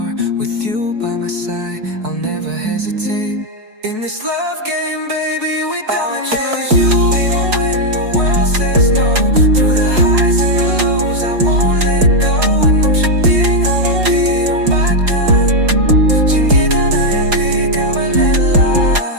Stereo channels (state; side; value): late; left; 4.6 ms